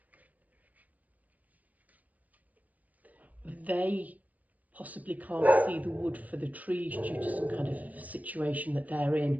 They possibly can't see the wood for the trees due to some kind of situation that they're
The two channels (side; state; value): left; late; 0.071 ms